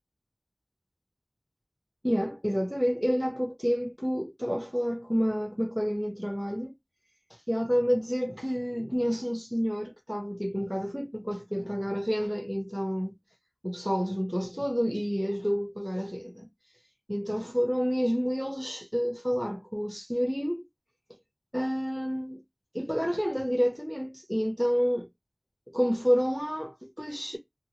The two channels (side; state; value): both; identical; correlation 1.00